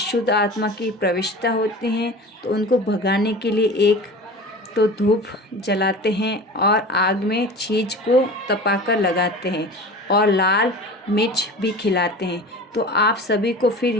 आत्मा की प्रविष्टता होती हैं तो उनको भगाने के लिए एक तो धूप जलाते हैं और आग में चीज को तपाकर लगाते हैं और लाल मिर्च भी खिलाते हैं। तो आप सभी को फिर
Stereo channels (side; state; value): both; normal; correlation 0.36